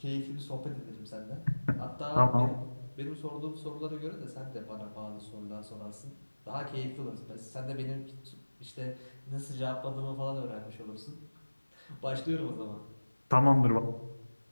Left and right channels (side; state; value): both; inverted; correlation -1.00